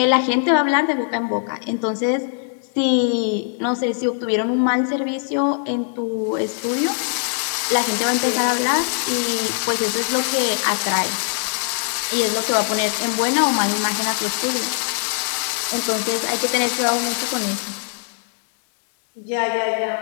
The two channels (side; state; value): right; silent; 63 dB below the other